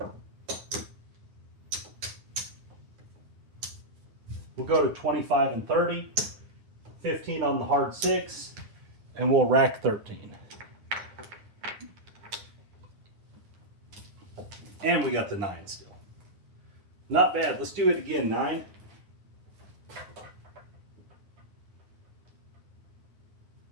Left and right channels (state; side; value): late; left; 10 ms